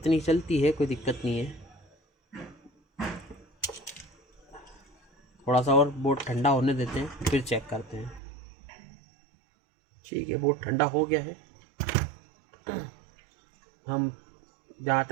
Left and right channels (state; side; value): drops out; left; at 8.2 s